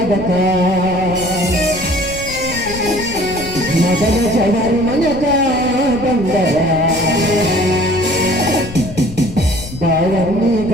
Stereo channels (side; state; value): left; noise; rumble, 13 dB below the sound